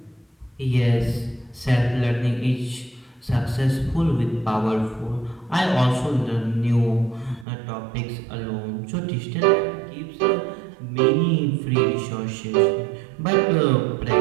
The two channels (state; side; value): drops out; left; at 7.5 s